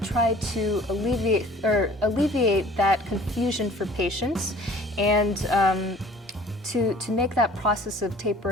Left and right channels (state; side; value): normal; both; correlation 0.50